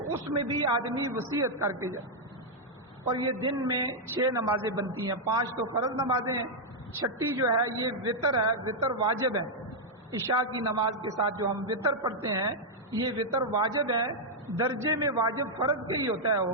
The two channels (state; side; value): normal; both; correlation -0.03